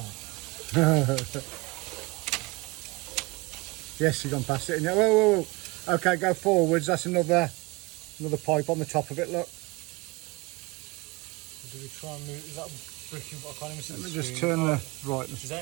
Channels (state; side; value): quieter; left; 24.6 dB